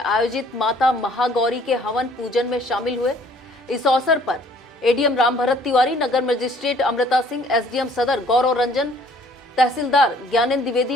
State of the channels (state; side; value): normal; both; correlation 0.57